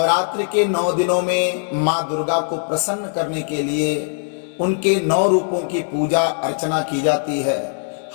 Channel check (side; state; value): right; silent; digital silence